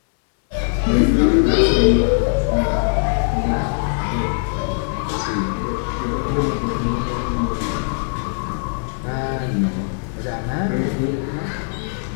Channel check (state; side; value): silent; right; 65 dB below the other